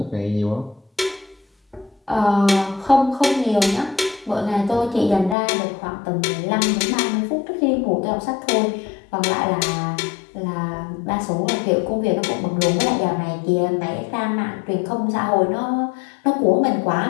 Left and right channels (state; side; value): drops out; right; at 5.4 s